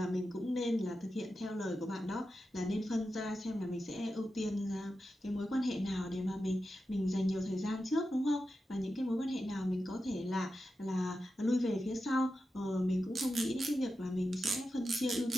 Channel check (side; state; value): both; normal; correlation 0.90